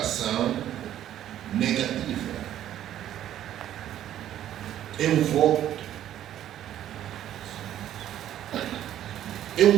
negativa. É um voto. É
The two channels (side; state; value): left; quieter; 11.7 dB